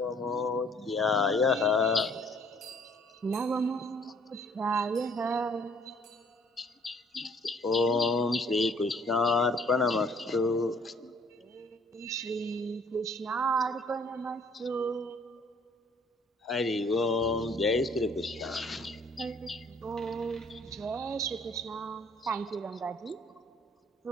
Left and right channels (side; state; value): both; normal; correlation 0.59